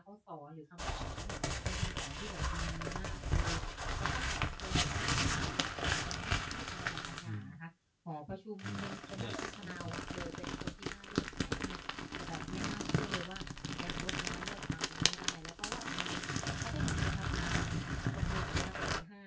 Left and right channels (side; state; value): both; identical; correlation 1.00